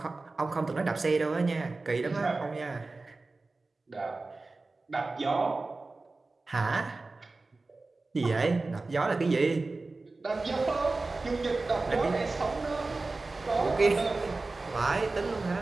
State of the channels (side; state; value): left; quieter; 3.5 dB